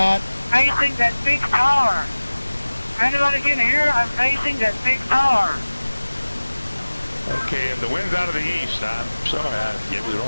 Facing that big tower. Anybody can hear? I'm facing that big tower. Okay, and the wind's out of the east. I'm sorry, I gave you the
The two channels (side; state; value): both; inverted; correlation -1.00